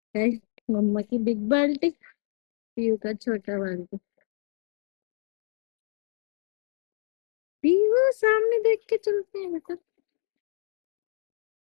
है मम्मा की बिग बाल्टी, पीयू का छोटा बाल्टी। पीहू सामने देख के चलते हैं बेटा।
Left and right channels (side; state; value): right; silent; digital silence